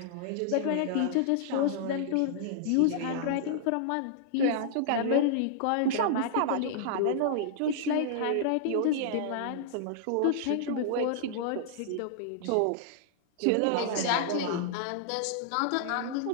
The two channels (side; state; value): both; different; correlation -0.01